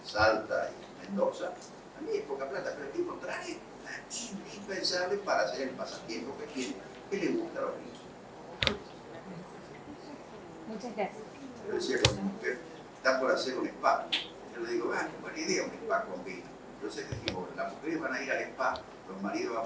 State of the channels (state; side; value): identical; both; correlation 1.00